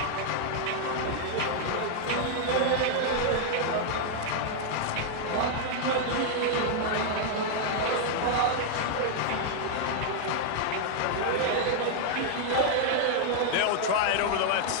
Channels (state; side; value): different; both; correlation 0.00